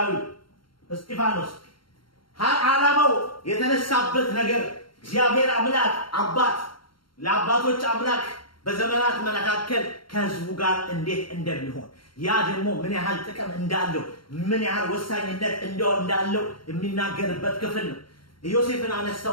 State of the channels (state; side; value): late; right; 0.73 ms